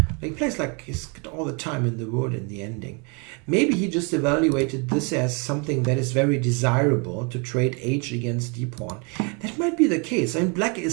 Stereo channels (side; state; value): left; quieter; 33.2 dB